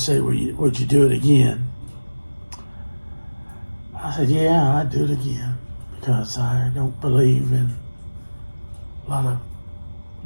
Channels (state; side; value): inverted; both; correlation -1.00